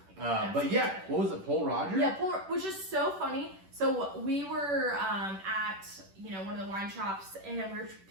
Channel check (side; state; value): left; late; 10 ms